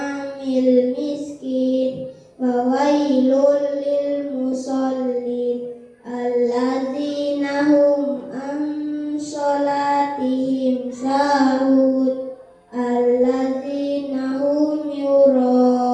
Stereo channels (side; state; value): both; identical; correlation 1.00